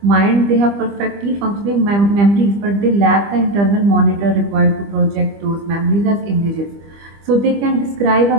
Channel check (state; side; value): late; left; 25 ms